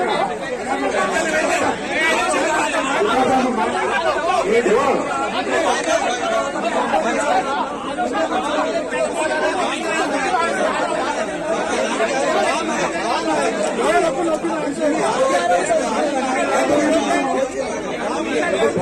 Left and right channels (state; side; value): identical; both; correlation 1.00